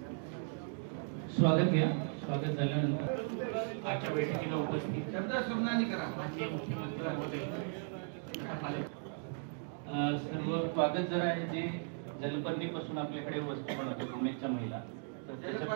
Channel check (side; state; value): left; silent; 53 dB below the other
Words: स्वागत घ्या. स्वागत झाल्यानंतर आजच्या बैठकीला उपस्थित माननीय मुख्यमंत्री महोदय सर्व स्वागत जर आहे जे जलपर्णीपासून आपल्याकडे वस्तू बनवते उमेदच्या महिला